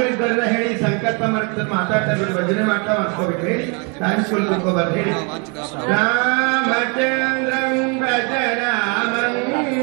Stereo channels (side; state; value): left; quieter; 33.9 dB